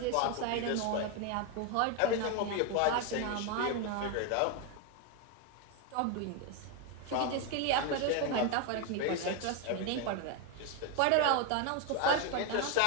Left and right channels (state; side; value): different; both; correlation 0.01